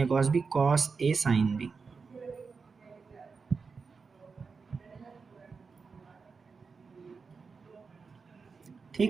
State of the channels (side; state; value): left; quieter; 4.9 dB